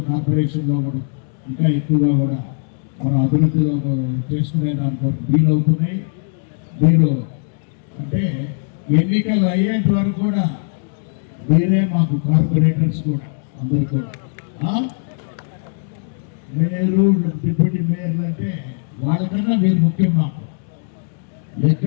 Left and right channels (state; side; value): silent; right; digital silence